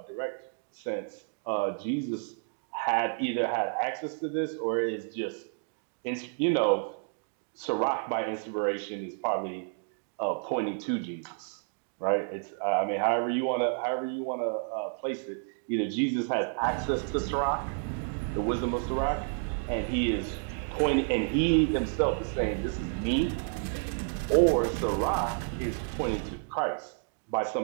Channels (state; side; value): silent; left; 57 dB below the other